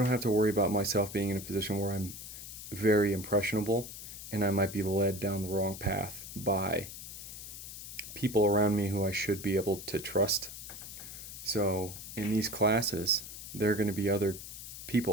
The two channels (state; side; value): noise; left; hiss, 11 dB below the sound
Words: myself being in a position where I'm very impressionable and I might be led down the wrong path by people around me who I should be able to trust. So in these classes, there are going to be other